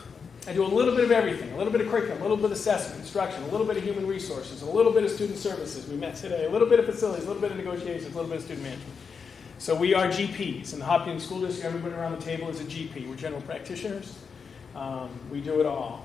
I do a little bit of everything. A little bit of curriculum, a little bit of assessment, instruction, a little bit of human resources, a little bit of student services. We met today. A little bit of facilities, a little bit of negotiations, a little bit of student management. So we are GPs. In the Hopkinton School District, everybody around the table is a GP. We're general practitioners. We do it all.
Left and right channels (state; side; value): quieter; right; 5.8 dB